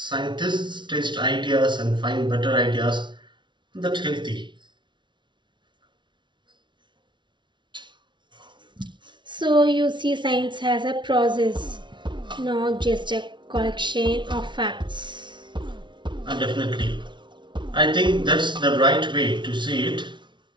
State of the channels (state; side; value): late; left; 0.23 ms